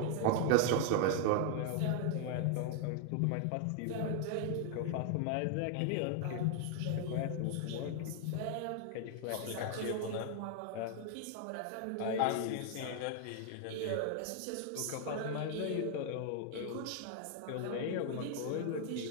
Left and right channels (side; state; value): both; different; correlation 0.00